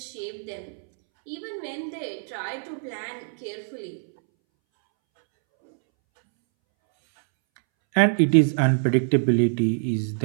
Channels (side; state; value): left; silent; 62 dB below the other